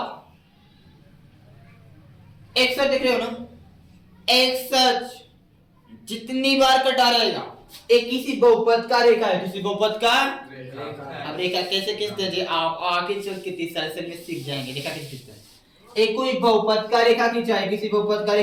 एक्स देख रहे हो ना, एक्स जितनी बार कटा रहेगा, एक किसी बहुपद का रेखा है, किसी बहुपद का रेखा। अब रेखा कैसे खींचते हैं, आप आगे चल के 30 साल से में सीख जाएंगे रेखा कैसे खींचते हैं। एक कोई बहुपद का रेखा खींचा है, किसी बहुपद का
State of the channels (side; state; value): both; identical; correlation 1.00